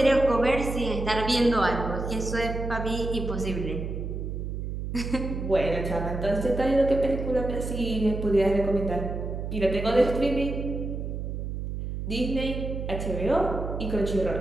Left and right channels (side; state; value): right; noise; hum, 5 dB below the sound